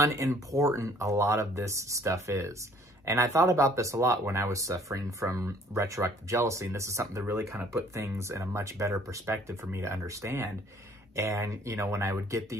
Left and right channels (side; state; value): both; normal; correlation 0.57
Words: a lot of this stuff is. And I thought about this a lot when I was suffering from retroactive jealousy. And this is something that really kind of put things in a much better perspective for me to understand. And, when I would get